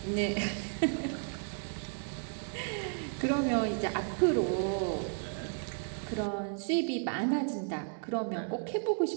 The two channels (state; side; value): silent; left; 55 dB below the other